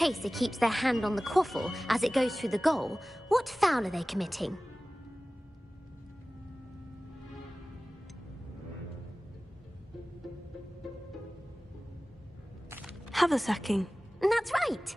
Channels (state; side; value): normal; both; correlation 0.97